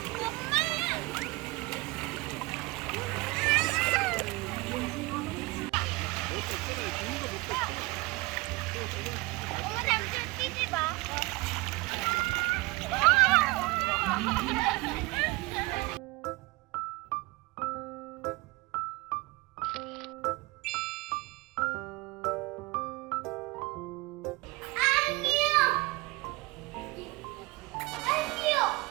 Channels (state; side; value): quieter; left; 23.3 dB